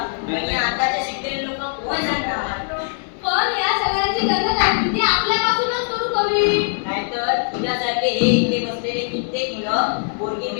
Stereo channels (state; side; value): silent; right; 65 dB below the other